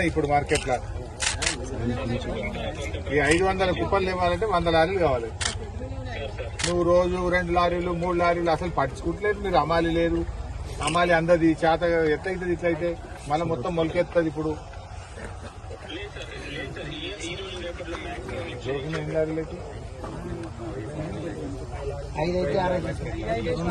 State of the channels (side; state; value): both; identical; correlation 1.00